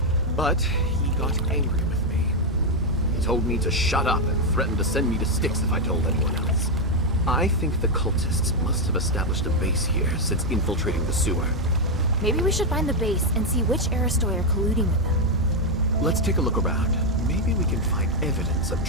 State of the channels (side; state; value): both; normal; correlation 0.02